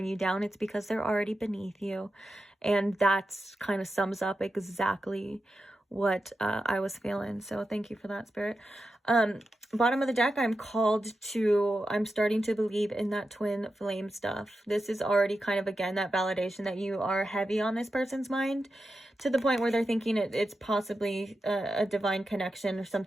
you down, it's because they're already beneath you. And that's kind of sums up exactly what I was feeling. So thank you for that, Spirit. Bottom of the deck, I'm starting to believe in that twin flame stuff. This is already kind of, again, that validation that you are heavy on this person's mind, to the point where they're thinking it's possibly a divine connection or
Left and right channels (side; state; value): both; normal; correlation 0.90